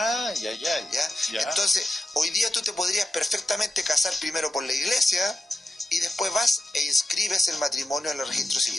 Ya. Entonces, hoy día tú te podrías perfectamente casar primero por la iglesia y después vas e inscribes el matrimonio en el registro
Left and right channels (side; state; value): both; normal; correlation 0.91